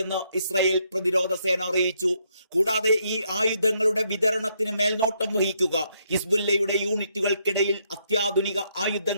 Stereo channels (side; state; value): both; inverted; correlation -0.74